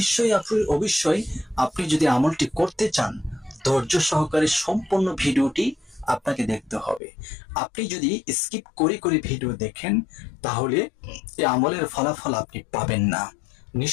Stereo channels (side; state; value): right; drops out; at 7.0 s